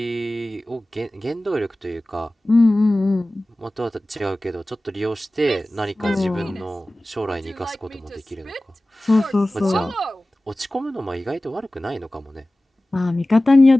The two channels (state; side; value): normal; both; correlation 0.97